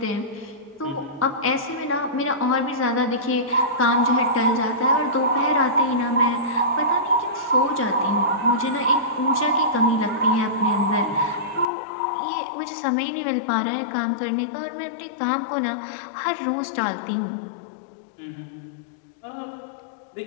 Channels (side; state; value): right; drops out; at 11.7 s